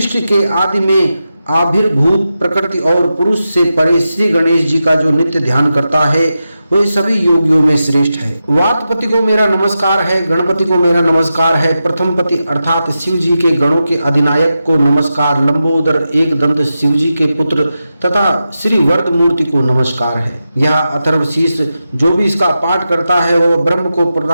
के आदि में आविर्भूत प्रकृति और पुरुष से परे श्री गणेश जी का जो नित्य ध्यान करता है वह सभी योगियों में श्रेष्ठ है। वातपति को मेरा नमस्कार है, गणपति को मेरा नमस्कार है, प्रथम पति अर्थात शिव जी के गणों के अधिनायक को नमस्कार, लंबोदर एक दंत शिव जी के पुत्र तथा श्री वरद मूर्ति को नमस्कार है। यह अथर्वशीष जो भी इसका पाठ करता है वह ब्रह्म को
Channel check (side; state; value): both; inverted; correlation -0.90